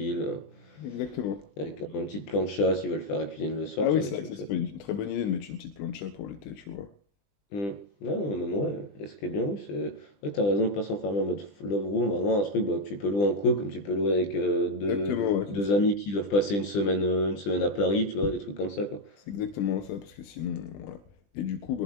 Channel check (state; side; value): late; right; 20 ms